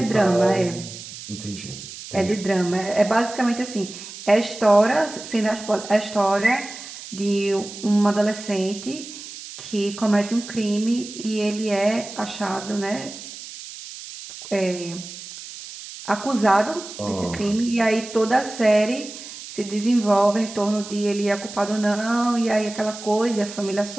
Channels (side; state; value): right; noise; hiss, 13 dB below the sound